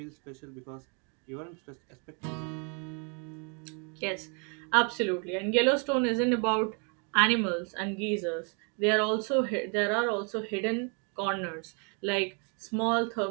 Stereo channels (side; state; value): left; quieter; 37.3 dB